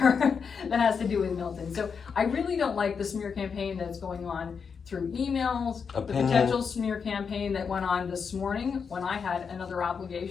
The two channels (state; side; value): quieter; right; 6.1 dB